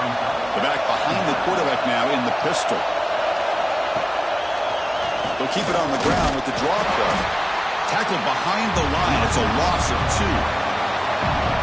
The back behind the quarterback now in the pistol. They'll keep it on the ground with the draw play. Tackled behind the line. It's a loss of 2.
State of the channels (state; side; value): identical; both; correlation 1.00